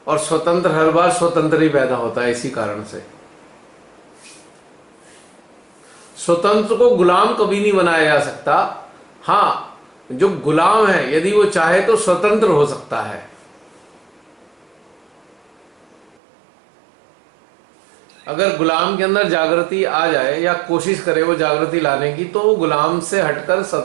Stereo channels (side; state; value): left; drops out; at 16.2 s